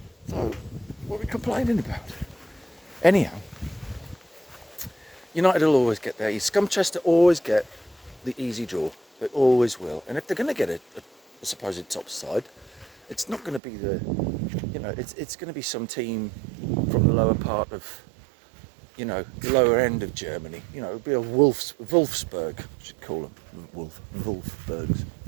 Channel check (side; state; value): left; drops out; at 13.6 s